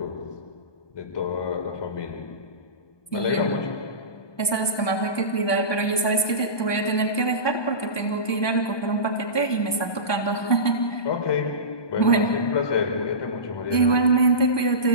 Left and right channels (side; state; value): right; late; 1.2 ms